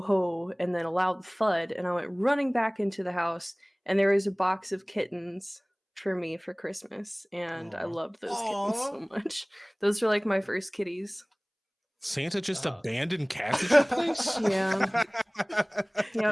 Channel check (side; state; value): both; identical; correlation 1.00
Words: ho, and then a loud thud, and I went running back into the house, and there was a box of kittens for me for Christmas, and I Aw. loved those kittens so much. Those were like my first kitties. Santa just abandoned cats at your place? Yeah.